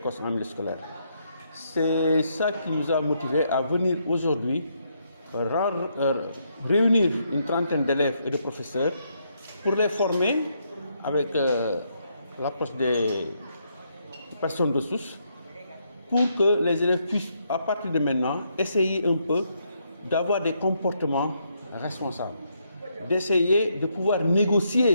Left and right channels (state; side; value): inverted; both; correlation -0.76